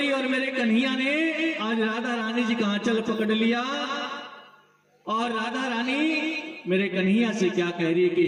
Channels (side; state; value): both; identical; correlation 1.00